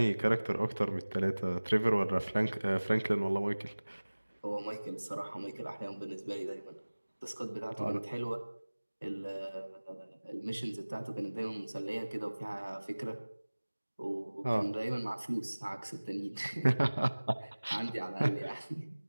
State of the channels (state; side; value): inverted; both; correlation -1.00